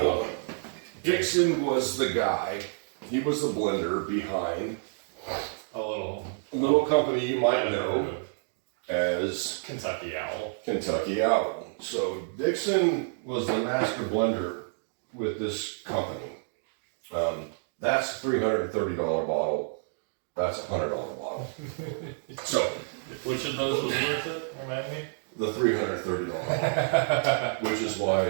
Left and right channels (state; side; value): silent; left; digital silence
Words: the guy. He was the blender behind a little company you might know as Kentucky Owl. Kentucky Owl. So Dixon was the master blender with this company. That's a $330 bottle. That's a $100 bottle. So, which of those was worth it? Remind me. The $330, which is